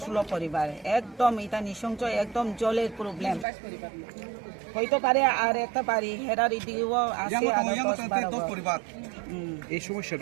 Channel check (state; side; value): drops out; left; at 3.5 s